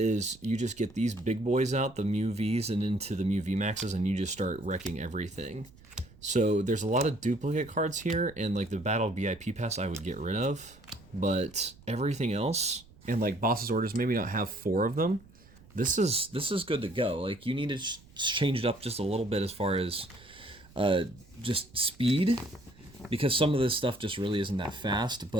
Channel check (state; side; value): noise; right; rumble, 24 dB below the sound